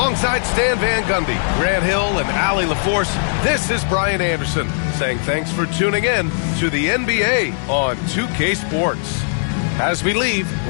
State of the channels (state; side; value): silent; right; 67 dB below the other